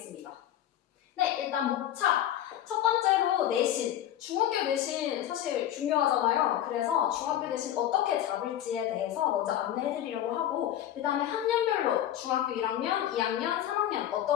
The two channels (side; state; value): right; quieter; 11.7 dB